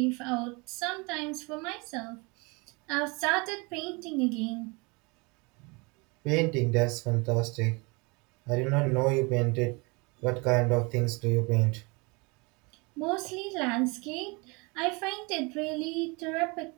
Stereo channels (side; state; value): left; quieter; 28.5 dB